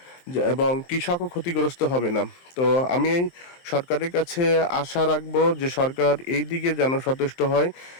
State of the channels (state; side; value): late; right; 23 ms